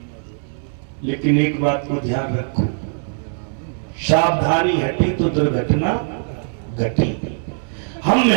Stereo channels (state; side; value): silent; left; 63 dB below the other